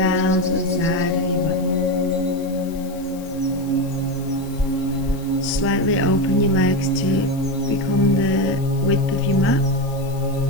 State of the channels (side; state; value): left; noise; hiss, 21 dB below the sound